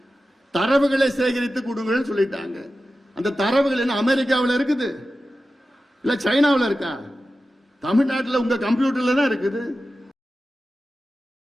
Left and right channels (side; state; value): both; normal; correlation 0.93